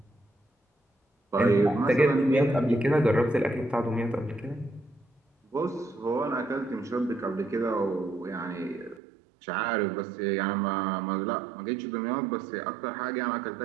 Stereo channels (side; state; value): left; drops out; at 9.0 s